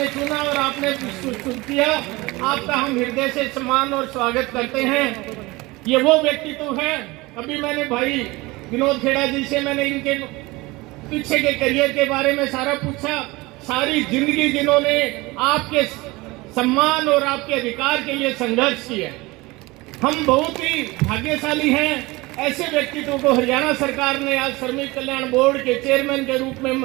चुना और आपने किया। आपका हम हृदय से सम्मान और स्वागत करते हैं। ये वो व्यक्तित्व है, अभी मैंने भाई विनोद खेड़ा जी से मैंने इनके पीछे के करियर के बारे में सारा पूछा। सारी जिंदगी जिन्होंने आपके सम्मान और आपके अधिकार के लिए संघर्ष किया। हम बहुत ही भाग्यशाली हैं, ऐसे व्यक्तित्व को हरियाणा सरकार ने आज श्रमिक कल्याण बोर्ड के चेयरमैन के रूप में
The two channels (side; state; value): left; quieter; 22.2 dB